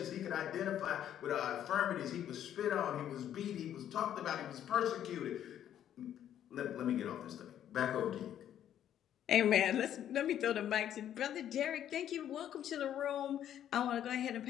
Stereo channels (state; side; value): quieter; right; 10.6 dB